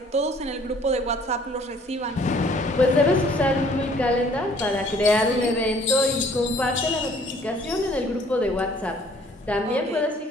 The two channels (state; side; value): normal; both; correlation 0.57